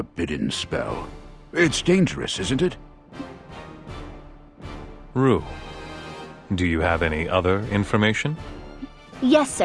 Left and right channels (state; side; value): identical; both; correlation 1.00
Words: spell. It's dangerous, isn't it? Rue, do you have any other information? Yes,